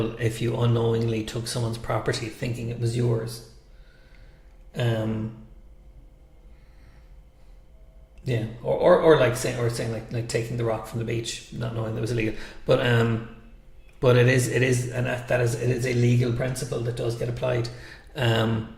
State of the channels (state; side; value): identical; both; correlation 1.00